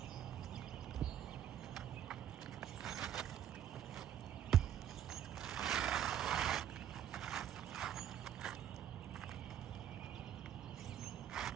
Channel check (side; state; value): left; quieter; 10.1 dB